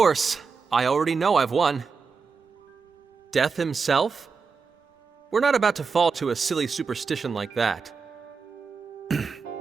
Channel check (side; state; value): left; quieter; 5.1 dB